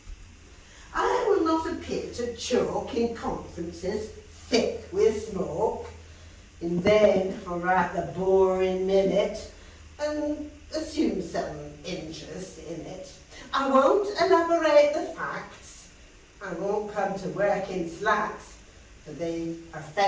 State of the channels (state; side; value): identical; both; correlation 1.00